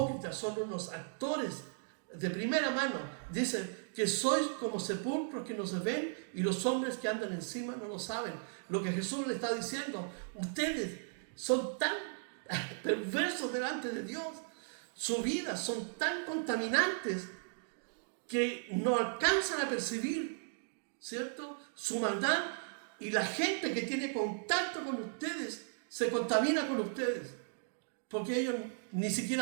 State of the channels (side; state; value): left; silent; digital silence